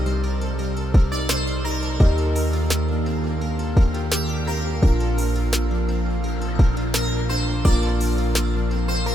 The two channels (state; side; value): normal; both; correlation 0.82